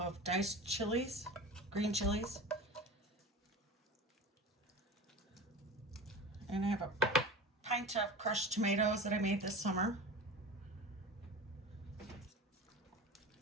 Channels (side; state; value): both; normal; correlation 0.33